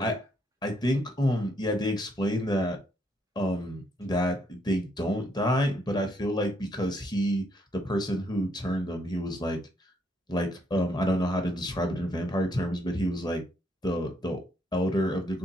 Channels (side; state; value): both; normal; correlation 0.73